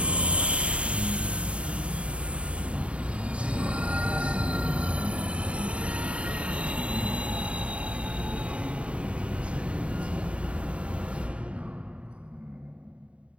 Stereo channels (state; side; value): late; left; 0.061 ms